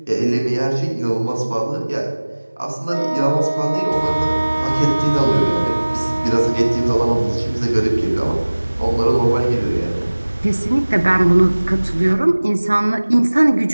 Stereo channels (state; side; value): inverted; both; correlation -1.00